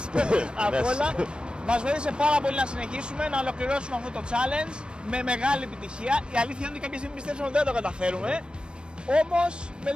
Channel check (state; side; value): late; left; 0.055 ms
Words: απ' όλα. Μας βοήθησε πάρα πολύ να συνεχίσουμε, να ολοκληρώσουμε αυτό το challenge με μεγάλη επιτυχία. Η αλήθεια είναι ότι κάποια στιγμή πιστεύουμε ότι δεν το καταφέρουμε. Όμως με